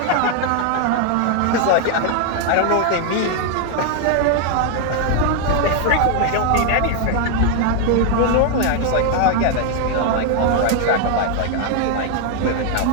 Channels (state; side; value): different; both; correlation 0.00